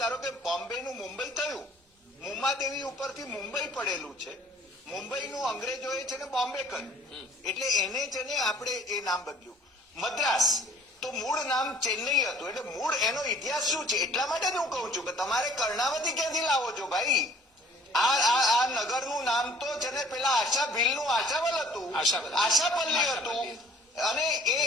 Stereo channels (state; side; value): normal; both; correlation 0.54